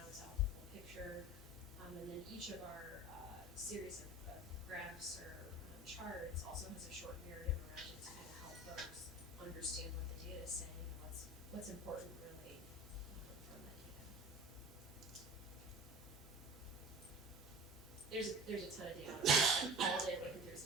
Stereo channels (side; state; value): both; normal; correlation 0.37